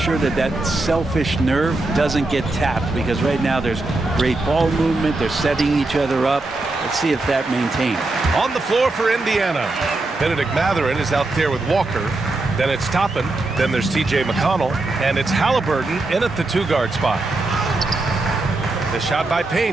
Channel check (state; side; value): quieter; left; 3.0 dB